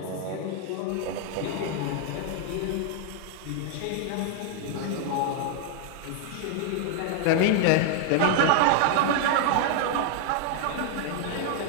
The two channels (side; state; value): both; different; correlation 0.00